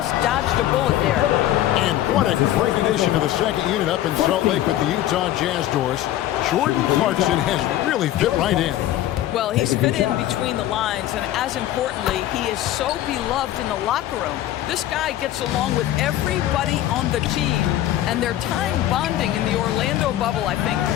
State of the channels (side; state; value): right; quieter; 13.3 dB